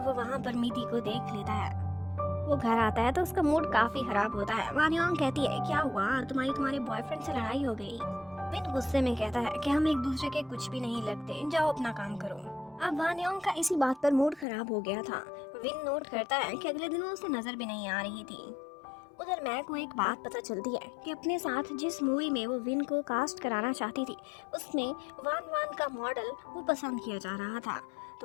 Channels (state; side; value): drops out; right; at 14.5 s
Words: वहाँ पर मिधी को देख लेता है। वो घर आता है तो उसका मूड काफी खराब होता है। वानियोंग कहती है क्या हुआ, तुम्हारे बॉयफ्रेंड से लड़ाई हो गई। विन गुस्से में कहता है कि हम एक दूसरे के कुछ भी नहीं लगते, जाओ अपना काम करो। अब वानियोंग का इसी बात पर मूड खराब हो गया था। विन नोट करता है कि अगले दिनों उसे नजर भी नहीं आ रही थी। उधर मैं को एक बात पता चलती है कि अपने साथ जिस मूवी में वो विन को कास्ट कराना चाहती थी उसमें वान वान का मॉडल वो पसंद किया जा रहा था।